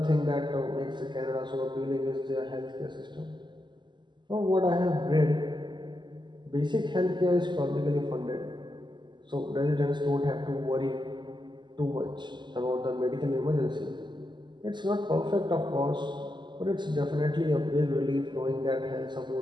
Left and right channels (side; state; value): left; late; 0.22 ms